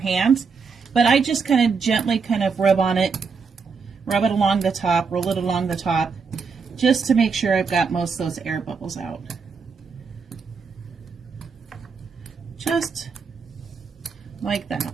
But I just kind of gently kind of rub on it, rub it along the top, roll it along the top, just to make sure I've got most of those air bubbles out. Just like that.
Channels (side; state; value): left; quieter; 5.3 dB